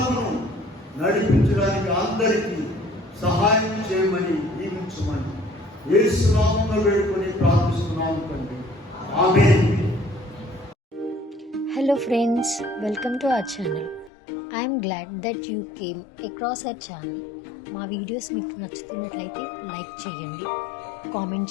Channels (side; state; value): right; drops out; at 14.1 s